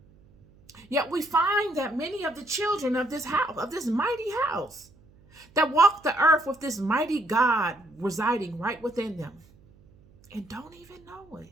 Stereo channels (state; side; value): noise; right; hum, 28 dB below the sound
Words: Yet we find that many of the children of this house, of this mighty house, that walk the earth with this mighty God residing right within them and don't even know it,